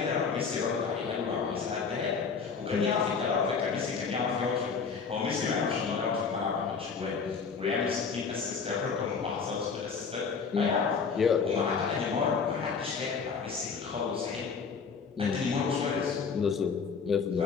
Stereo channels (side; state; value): right; quieter; 5.6 dB